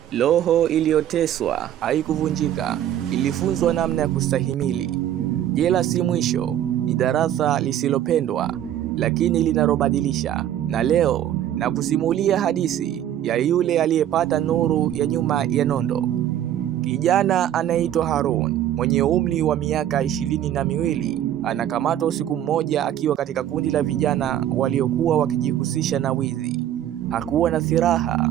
Roho iliyoteswa haikuvunjika, ilifunzwa namna ya kustahimili. Jela si mwisho, ni darasa lisilopendwa, lakini linalobadilisha. Na leo na kusimulia hadithi ya yule aliyepata nuru ya nyuma ya nondo. Kijana anaitwa Harun, mwenye umri wa miaka 22, anakamatwa usiku mmoja akiwa katika kundi la vijana waliokuwa wakijihusisha na wizi. Hakuwa na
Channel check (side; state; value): left; quieter; 11.3 dB